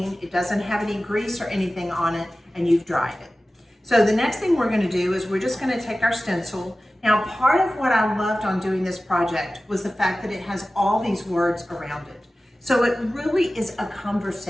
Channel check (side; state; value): both; normal; correlation 0.96